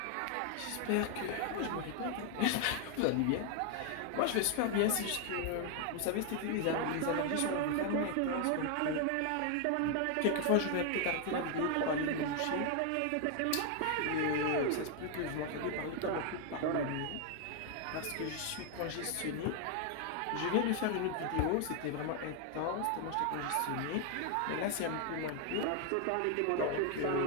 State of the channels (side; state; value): both; different; correlation 0.00